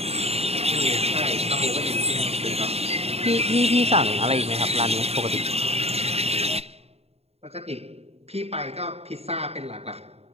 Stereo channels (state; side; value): late; left; 0.30 ms